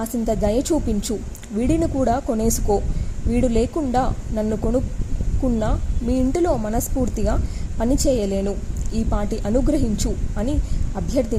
దయ చూపించు. వీడిని కూడా కొనేసుకో. వీడు లేకుండా నన్ను కొనుక్కున్నా మీ ఇంటిలో మనస్ఫూర్తిగా పనిచేయలేను. ఈ పాటి అనుగ్రహించు అని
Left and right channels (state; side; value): identical; both; correlation 1.00